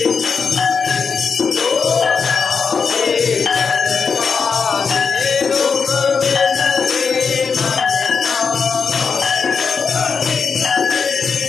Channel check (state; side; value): quieter; right; 5.6 dB